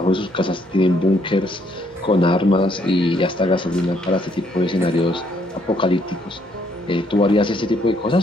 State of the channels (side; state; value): both; normal; correlation 0.69